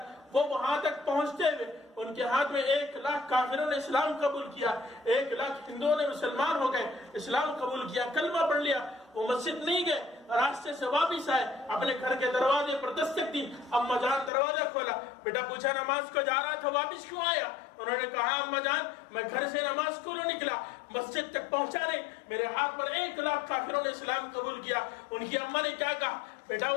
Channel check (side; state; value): right; drops out; at 14.3 s